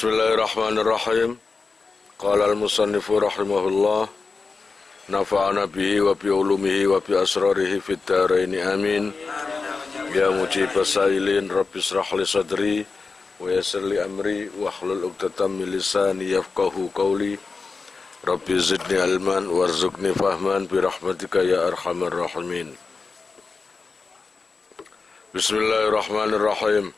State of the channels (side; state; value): right; quieter; 4.4 dB